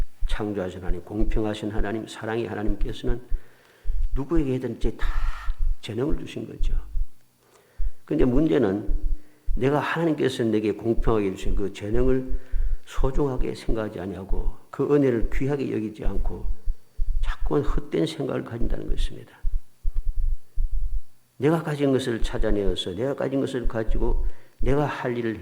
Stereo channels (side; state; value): both; identical; correlation 1.00